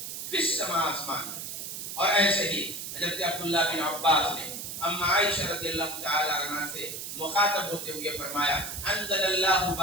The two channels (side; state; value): right; noise; hiss, 7 dB below the sound